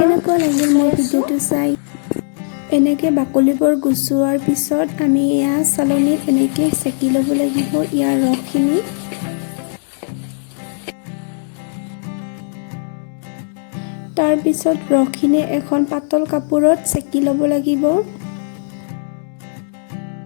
লাগিল মোৰ ভিডিঅ'টো চাই। এনেকৈ বাকলিবোৰ গুচোৱাৰ পিছত আমি এয়া চালনীত এনেকৈ চেকি ল'ব লাগিব ইয়াৰ ৰসখিনি। তাৰ পিছত ৰসখিনি এখন পাতল কাপোৰত চেকি ল'ব লাগিব।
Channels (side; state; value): right; silent; digital silence